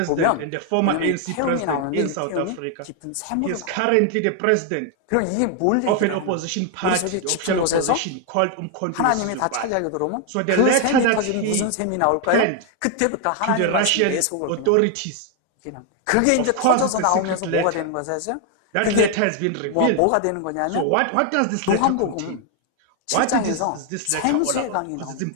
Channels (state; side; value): different; both; correlation 0.00